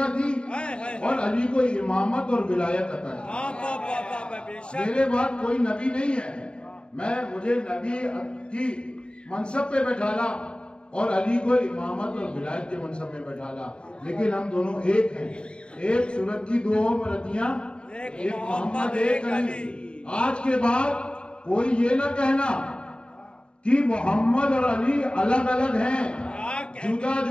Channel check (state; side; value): late; right; 0.053 ms